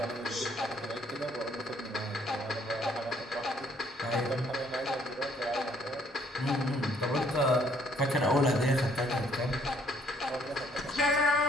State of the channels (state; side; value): normal; both; correlation 0.65